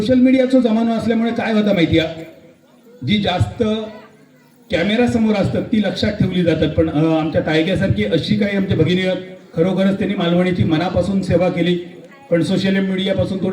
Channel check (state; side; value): identical; both; correlation 1.00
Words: मीडियाचा जमाना असल्यामुळे काय होता माहिती आहे, जी जास्त कॅमेरा समोर असतात ती लक्षात ठेवली जातात. पण आमच्या तायग्यासारखी अशी काही आमच्या भगिनी आहेत, खरोखरच त्यांनी मालवणीची मनापासून सेवा केली. पण सोशल मीडियापासून